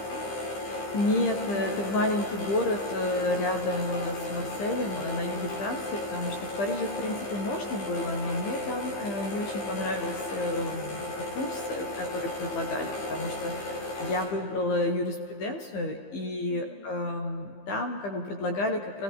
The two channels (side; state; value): right; late; 15 ms